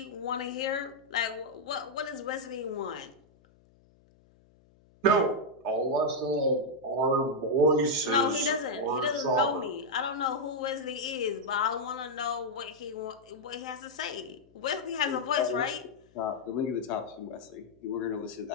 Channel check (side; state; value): left; noise; hum, 30 dB below the sound